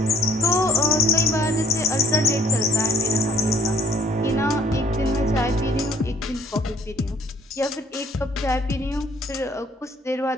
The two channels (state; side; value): normal; both; correlation 0.60